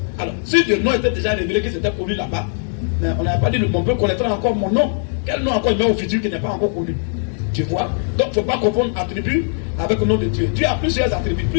Alors, si le nom était déjà révélé, que c'était connu là-bas, mais on n'avait pas dit mon peuple connaîtra encore mon nom. Quel nom encore il met au futur qui n'est pas encore connu? Tu vois? Donc, il ne faut pas confondre attribut avec le nom de Dieu. Dieu a plusieurs attributs,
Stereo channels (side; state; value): right; silent; 62 dB below the other